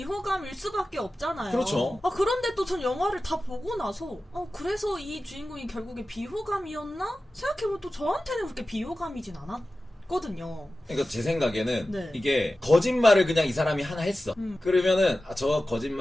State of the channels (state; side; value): normal; both; correlation 0.95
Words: 수밖에 없잖아요. 그렇죠. 그런데 또 전 영화를 다 보고 나서 그래서 이 주인공이 결국에 비호감이었나? 생각해보면 또 저한테는 그렇게 비호감이진 않았거든요. 그러니까 제 생각에는 네. 이게 거짓말을 그냥 이 사람이 하나 했어. 그러면은 저